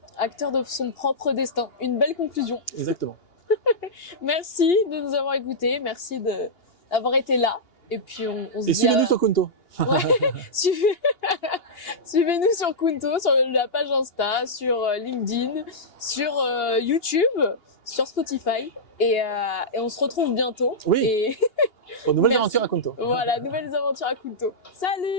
Acteur de son propre destin. Une belle conclusion. Exactement. Merci de nous avoir écoutés. Merci d'avoir été là. Et puis, on se Et dit suivez-nous sur Kunto. Ouais. Suivez-nous sur Kunto, sur la page Insta, sur LinkedIn, sur YouTube, sur Spotify. Et on se retrouve bientôt. Oui. Et Aux nouvelles Merci. aventures à Kunto. Voilà, nouvelles aventures à Kunto.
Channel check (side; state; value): right; late; 2.8 ms